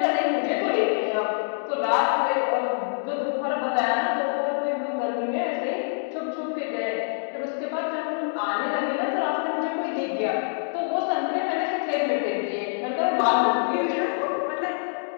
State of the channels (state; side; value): silent; right; digital silence